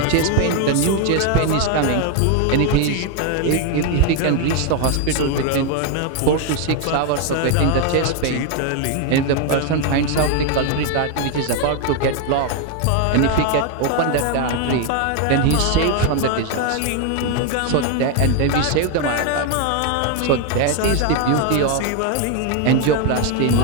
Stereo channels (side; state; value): both; different; correlation 0.01